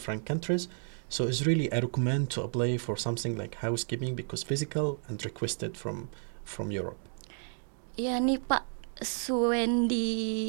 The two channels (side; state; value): left; silent; 57 dB below the other